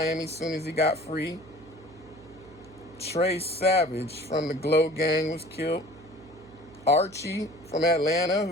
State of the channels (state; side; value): noise; right; hum, 21 dB below the sound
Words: as soon as he got free. Trey Savage from the Glow Gang was killed. Archie from Atlanta,